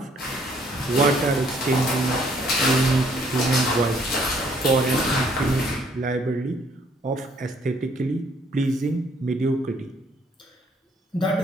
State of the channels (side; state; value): both; normal; correlation 0.64